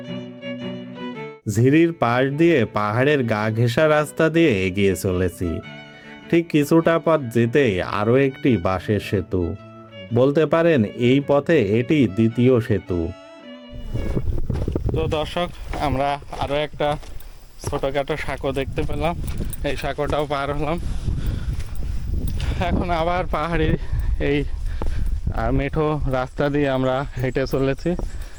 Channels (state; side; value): identical; both; correlation 1.00